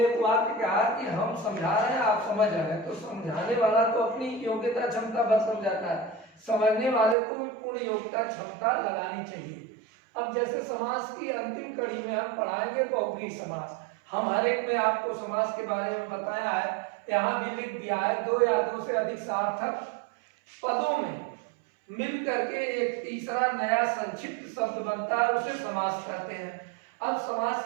एक वाक्य कहा कि हम समझा रहे हैं, आप समझ रहे हैं, तो समझाने वाला तो अपनी योग्यता क्षमता भर समझाता है, समझने वाले को भी पूर्ण योग्यता क्षमता लगानी चाहिए। अब जैसे समास की अंतिम कड़ी में हम पढ़ाएंगे बहुव्रीहि समास। हम हर एक में आपको समास के बारे में बताया है, यहाँ भी लिख दिया है। दो या दो से अधिक सार्थक पदों में मिल करके एक तीसरा नया संक्षिप्त शब्द बनता है, उसे समास कहते हैं। अब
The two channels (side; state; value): left; drops out; at 7.2 s